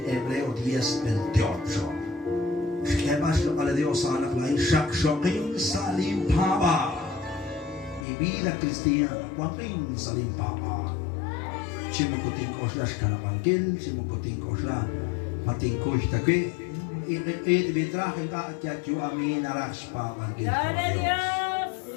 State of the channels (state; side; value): drops out; right; at 8.1 s